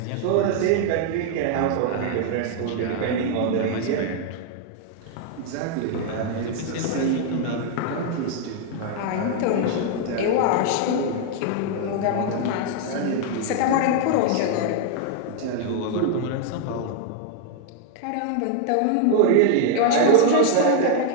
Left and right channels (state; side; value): different; both; correlation 0.00